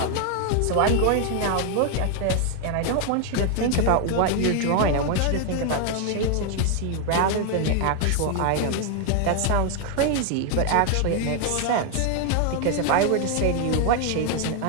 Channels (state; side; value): different; both; correlation 0.00